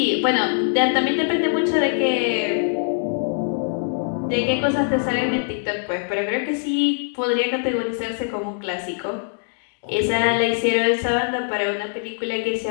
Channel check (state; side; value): silent; right; digital silence